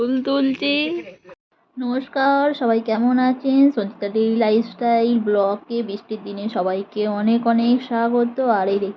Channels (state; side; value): identical; both; correlation 1.00